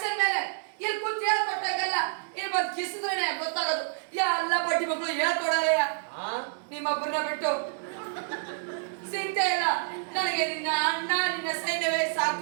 ಮೇಲೆ. ಇಲ್ಲಿ ಕೂತ್ ಹೇಳ್ಕೊಟ್ಟಂಗಲ್ಲ, ಇಲ್ಲಿ ಬಂದು ಕಿಸಿದ್ರೇನೆ ಗೊತ್ತಾಗೋದು. ಎಲ್ಲ ಬಡ್ಡಿ ಮಕ್ಕಳು ಹೇಳ್ಕೊಡೋರಯ್ಯ ನಿಮ್ಮೊಬ್ಬರನ್ನ ಬಿಟ್ಟು. ಚಿಂತೆ ಇಲ್ಲ, ನನಗೆ ನಿನ್ನ ಅಣ್ಣ ನಿನ್ನ ಸೈನ್ಯವೇ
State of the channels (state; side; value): silent; left; digital silence